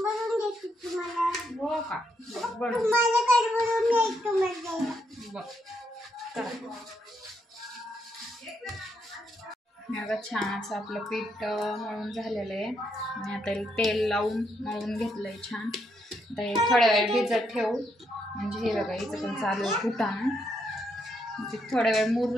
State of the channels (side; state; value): both; normal; correlation 0.77